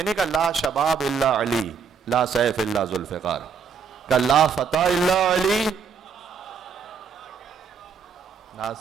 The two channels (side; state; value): left; quieter; 6.1 dB